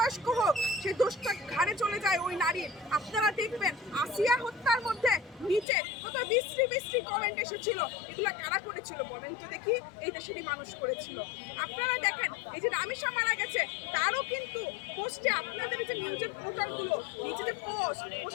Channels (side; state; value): right; drops out; at 5.7 s